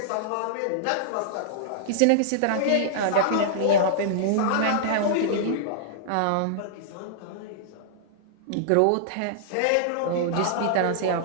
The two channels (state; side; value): different; both; correlation -0.01